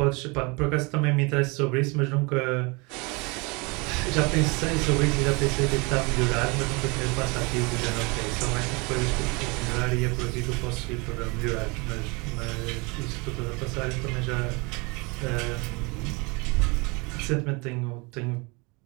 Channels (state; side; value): quieter; left; 28.2 dB